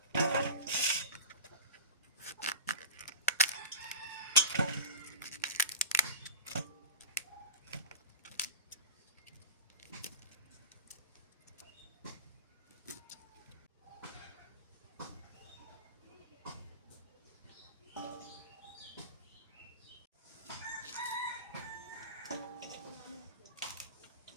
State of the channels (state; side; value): inverted; both; correlation -0.35